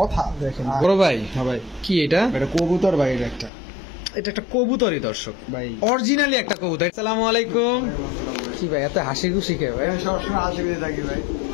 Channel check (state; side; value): drops out; right; at 3.5 s